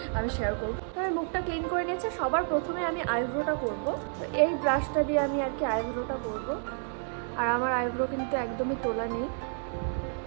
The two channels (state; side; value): silent; left; 58 dB below the other